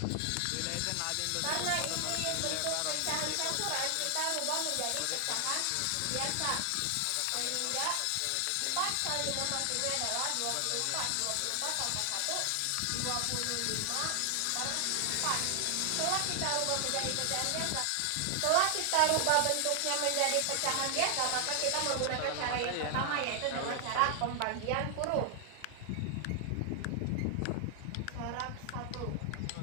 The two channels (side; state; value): both; different; correlation 0.00